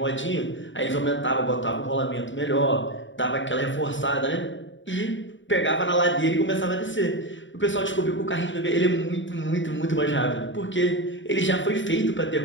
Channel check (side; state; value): right; late; 0.55 ms